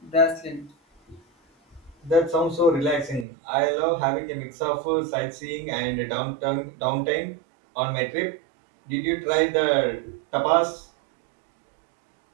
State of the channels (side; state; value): left; drops out; at 3.2 s